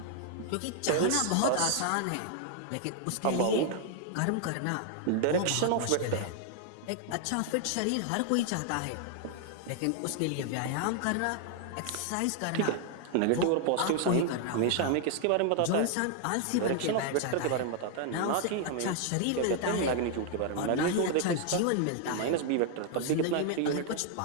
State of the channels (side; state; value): both; different; correlation 0.00